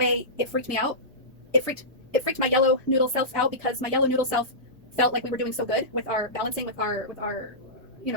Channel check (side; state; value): both; normal; correlation -0.18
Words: it freaked me out. It freaked my yellow noodle self out, because my yellow noodle self felt like we were doing so good with our balancing, with our